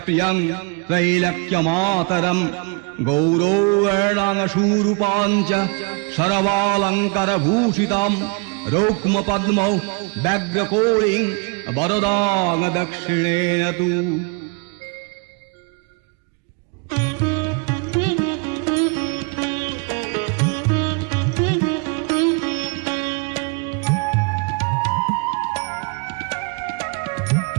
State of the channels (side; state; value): left; quieter; 32.4 dB